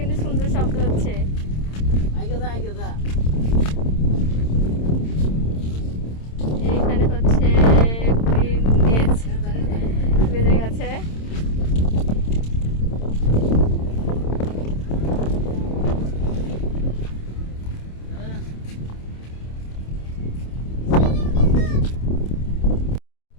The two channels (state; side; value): late; right; 27 ms